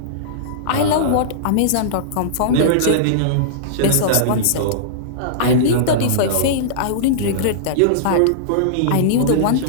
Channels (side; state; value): both; different; correlation -0.03